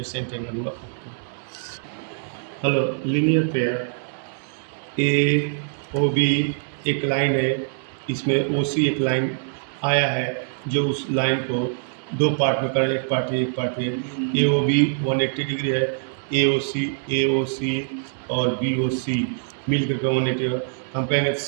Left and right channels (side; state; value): left; silent; digital silence